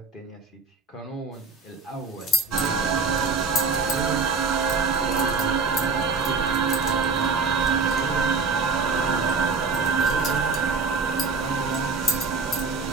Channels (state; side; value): quieter; left; 4.4 dB